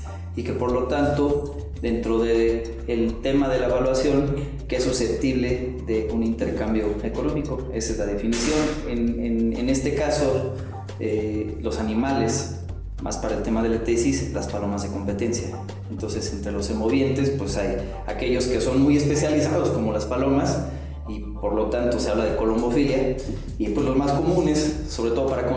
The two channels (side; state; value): both; identical; correlation 1.00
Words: y que por lo tanto, dentro del tema de la evaluación, que es susceptible de un intercambio económico. Esa es la definición. En este caso, los animales, más para el tema de la tesis, las palomas de competencia. Entonces, entre los semovientes, pues hay aquellos que son muy especializados, como las palomas, y por lo tanto se habla de colombofilia, y pues los más comunes, sobre todo para